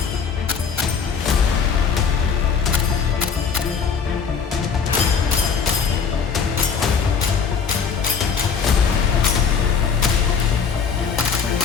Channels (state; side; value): quieter; right; 6.2 dB